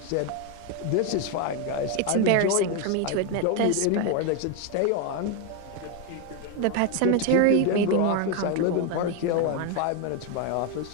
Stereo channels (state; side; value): different; both; correlation 0.01